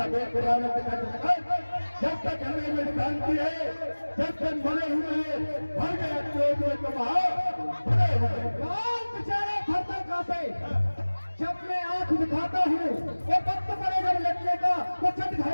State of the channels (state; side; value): inverted; both; correlation -1.00